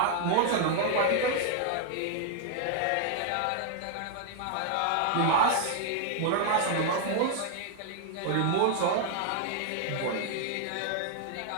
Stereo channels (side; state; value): both; different; correlation 0.00